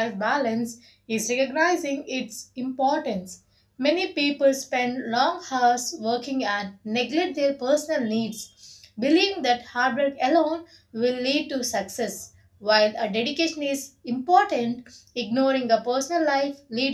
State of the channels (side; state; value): both; identical; correlation 1.00